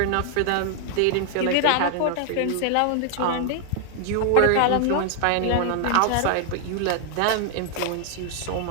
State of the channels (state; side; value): different; both; correlation 0.00